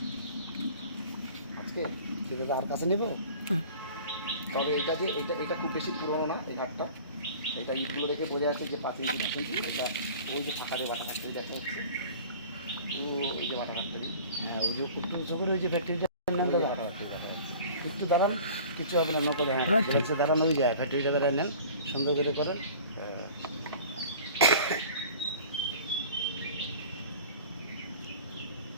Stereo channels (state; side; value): inverted; both; correlation -0.43